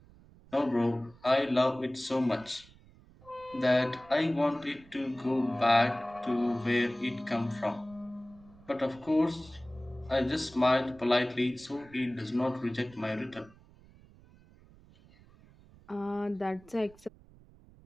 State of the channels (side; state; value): right; noise; rumble, 25 dB below the sound